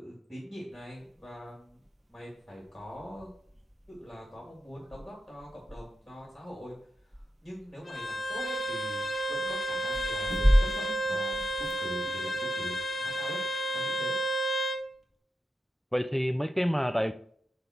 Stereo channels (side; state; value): both; normal; correlation 0.88